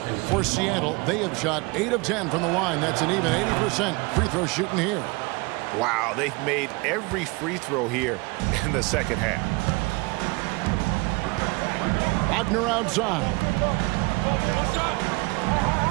For Seattle, they have shot 8 of 10 from the line. That's an even 80% free throw shooting here. Wow, they've made every free throw here in the second half. Wagner outside.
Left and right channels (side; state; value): left; quieter; 26.5 dB